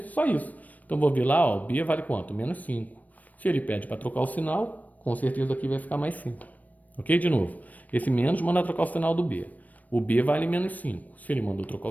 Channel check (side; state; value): right; late; 0.075 ms